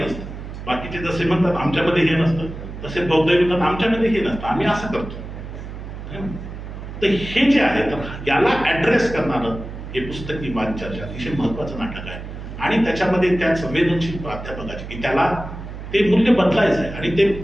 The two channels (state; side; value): noise; right; hum, 10 dB below the sound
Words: बाकीचे जसे म्हणतात आमच्यामध्ये हे नसतं, तसे बौद्ध म्हणतात आमच्यामध्ये हे नसतं, आम्ही असं करतो. तर हे जे आहे, तर याला ऍड्रेस करणारं हे पुस्तकी वाद चर्चा अतिशय महत्वाचं नाटक आहे. आणि त्याच्यामध्ये त्या संवेदनशील प्राध्यापकाचे की त्याला ते मूल्य बदलायचं आहे. आणि ते